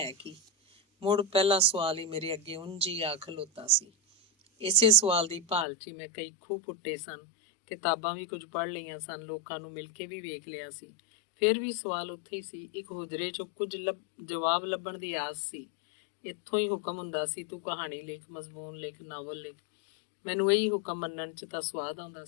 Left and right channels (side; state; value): right; drops out; at 5.7 s